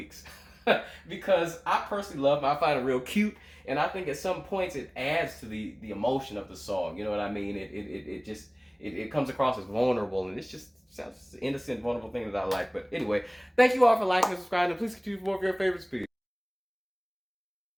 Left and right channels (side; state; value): both; identical; correlation 1.00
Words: Because I personally love them. I find it real cute, and I think at some points it adds to the emotion of the song. You know what I mean? It comes across as vulnerable, and it's just sounds innocent, vulnerable thing that I like. But anyway, thank you all for liking and subscribing, and please continue for more of your favorites. Peace.